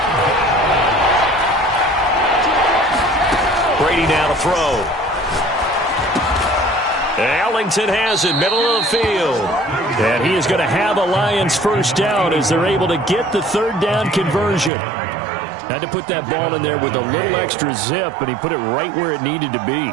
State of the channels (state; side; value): drops out; left; at 14.7 s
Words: Brady now to throw. Ellington has it, middle of the field. And he is going to have a Lions first down as they're able to get the third down conversion. Had to put that ball in there with a little extra zip, and he put it right where it needed to be.